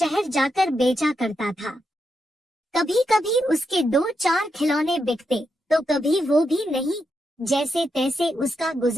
जाकर बेचा करता था। कभी कभी उसके 2-4 खिलौने बिकते तो कभी वो भी नहीं। जैसे तैसे उसका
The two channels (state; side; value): normal; both; correlation 0.84